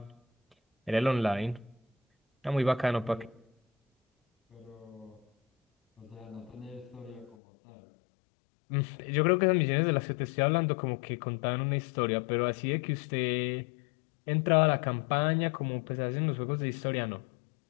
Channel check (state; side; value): drops out; right; at 7.4 s